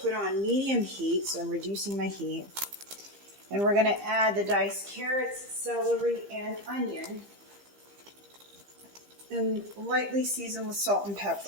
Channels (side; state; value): left; late; 15 ms